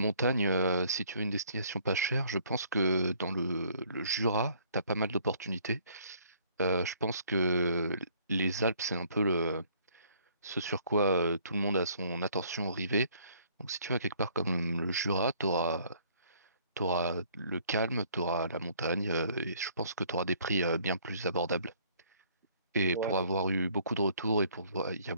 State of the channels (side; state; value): both; inverted; correlation -0.60